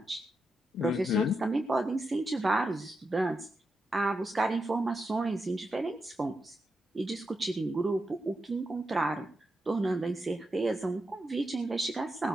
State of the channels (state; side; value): normal; both; correlation 0.87